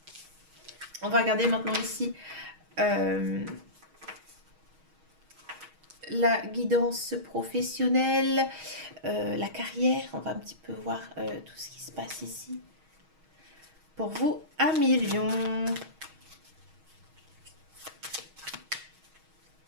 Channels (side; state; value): left; late; 6.3 ms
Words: On va regarder maintenant ici euh, la guidance professionnelle, la carrière. On va un petit peu voir tout ce qui se passe ici. Pour vous, un million.